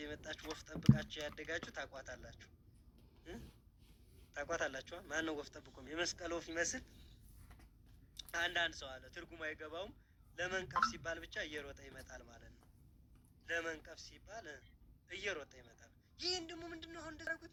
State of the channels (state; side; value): identical; both; correlation 1.00